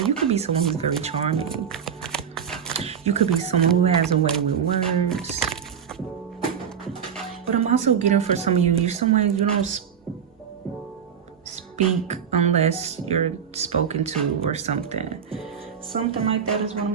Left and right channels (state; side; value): quieter; left; 7.8 dB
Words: you could be someone who's very charming. You could be someone who has a way with words. But I'm also getting for some of you, you're someone you don't speak unless you're spoken to or something. Something like that is what I'm